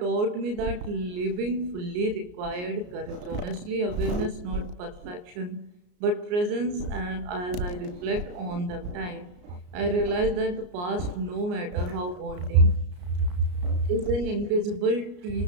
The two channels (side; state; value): left; late; 34 ms